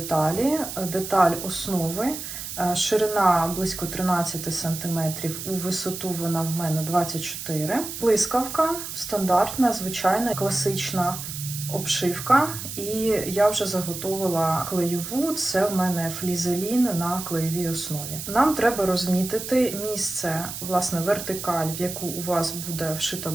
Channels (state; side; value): noise; right; hiss, 8 dB below the sound